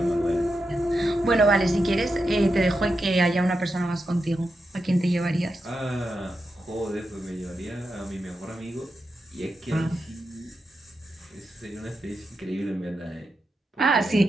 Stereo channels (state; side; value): normal; both; correlation 0.87